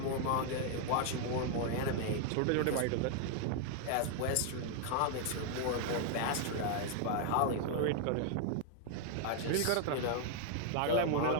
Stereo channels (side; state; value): both; different; correlation 0.00